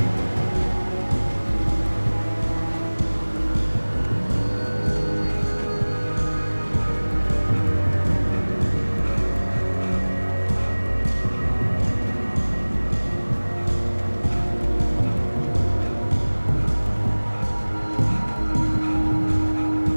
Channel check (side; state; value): both; inverted; correlation -1.00